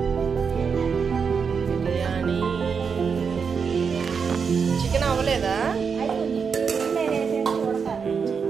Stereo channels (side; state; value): left; quieter; 6.0 dB